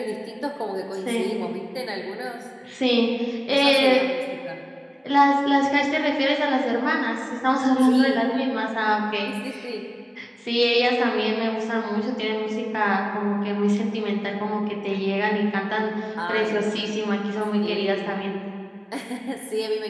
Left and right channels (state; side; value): identical; both; correlation 1.00